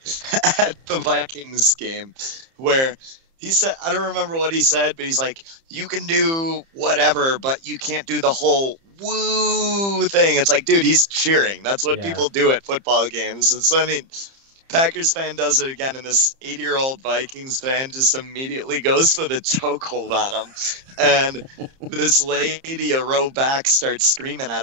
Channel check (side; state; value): left; late; 30 ms